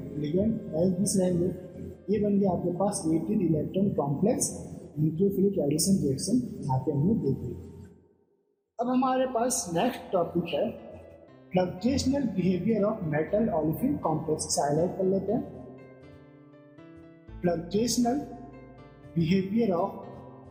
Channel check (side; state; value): both; identical; correlation 1.00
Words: लिगेंड एज दिस रहेंगे। ये बन गया आपके पास 18 electron complex nucleophilic addition reaction, यहाँ पे हमने देख ली। अब हमारे पास नेक्स्ट टॉपिक है fluxional behaviour of metal olefin complex. इसे हाईलाइट कर लेते हैं। Fluxional behaviour of